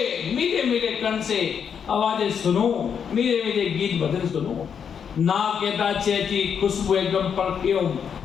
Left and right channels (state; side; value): quieter; right; 7.4 dB